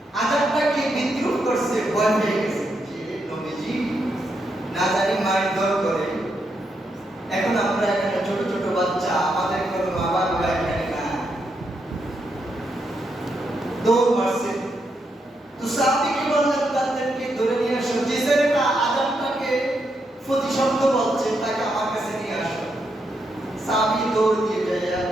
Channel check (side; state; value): both; normal; correlation 0.81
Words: আযানটাকে বিদ্রুপ করছে, ভয় পেয়ে গেছে যে নবীজি না জানি মারধর করে। এখন আমরা এখানে ছোট ছোট বাচ্চা, আমাদের কোনো মা বাবা এখানে না, দৌড় মারছে। তো সাহাবীকে বললেন তাদেরকে ধরে নিয়ে আসো, যে ছেলেটা আযানটাকে প্রতিশব্দ বলছে তাকে আমার কাছে নিয়ে আসো। সাহাবী দৌড় দিয়ে যায়